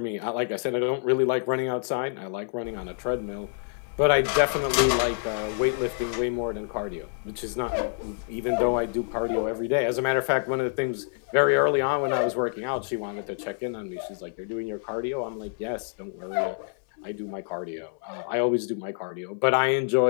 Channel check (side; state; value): right; silent; digital silence